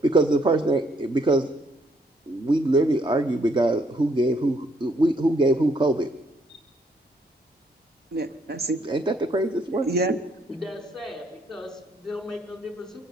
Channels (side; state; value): both; normal; correlation 0.69